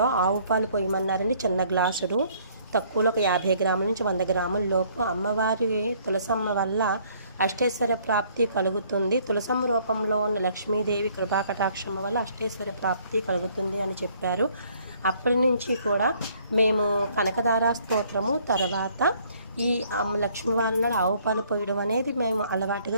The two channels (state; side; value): inverted; both; correlation -0.62